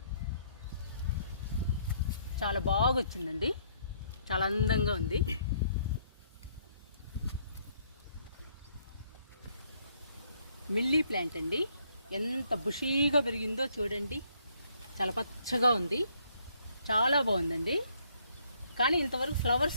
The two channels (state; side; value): inverted; both; correlation -0.68